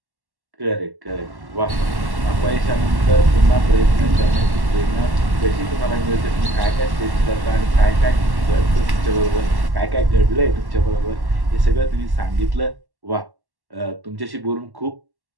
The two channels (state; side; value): late; left; 1.1 ms